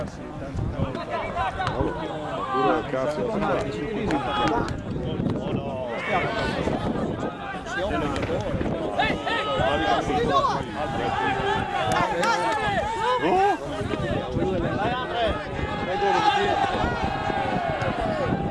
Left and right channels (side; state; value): both; identical; correlation 1.00